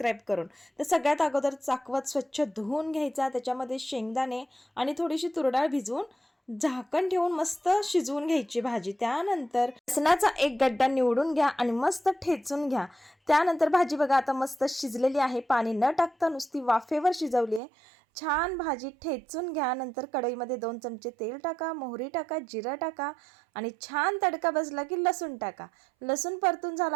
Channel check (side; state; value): left; drops out; at 17.6 s